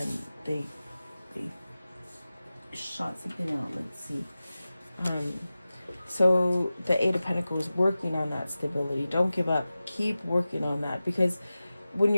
they shot something out. Let's see. So the Eight of Pentacles, working on that stability. Don't give up. Keep working on that, because when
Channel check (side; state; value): both; inverted; correlation -0.95